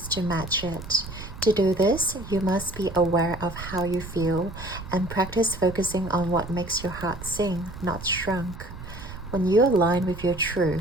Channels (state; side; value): noise; right; rumble, 13 dB below the sound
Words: to match it. To do this, you must be aware of how you feel and practice focusing on what makes your heart sing, not shrunk. When you align with your